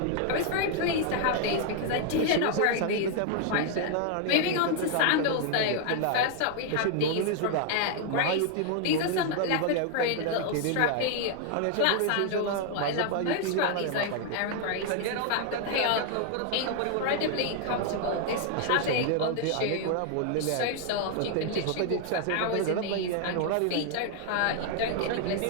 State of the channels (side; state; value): both; different; correlation 0.00